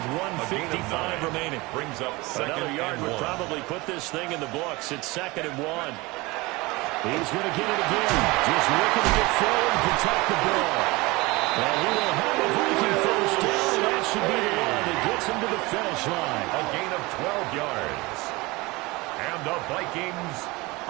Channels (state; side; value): quieter; left; 23.0 dB